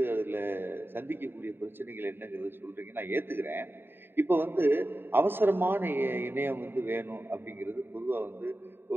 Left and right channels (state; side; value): late; left; 0.10 ms